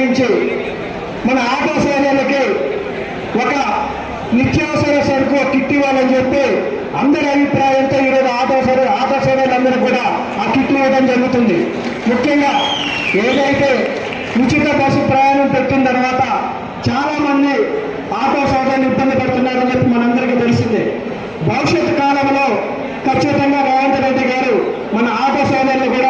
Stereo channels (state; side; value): identical; both; correlation 1.00